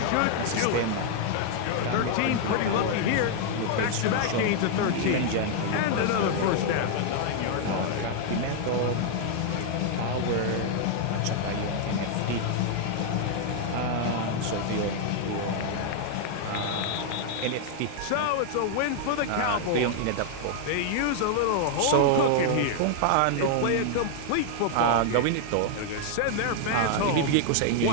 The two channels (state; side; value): different; both; correlation 0.00